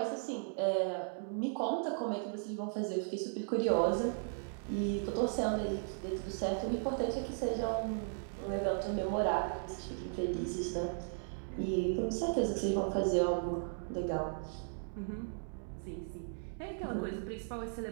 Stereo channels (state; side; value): silent; left; digital silence